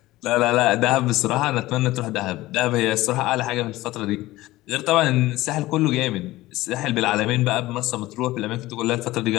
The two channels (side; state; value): right; quieter; 17.7 dB